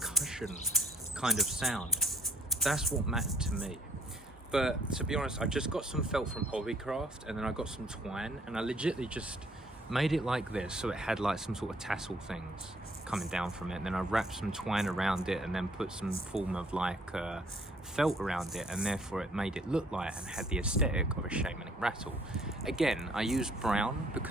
kind of sound. That's what mattered to me. But to be honest, I just got some felt from Hobbycraft, and then I got some twine, and I legitimately just made it like this, so it had like some sort of tassel things coming down from it, and then I wrapped some twine around it and then put some form of like felt around it, and therefore it made it look like and had the aesthetic of a shamanic rattle. Again, I used brown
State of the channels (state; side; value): normal; both; correlation 0.62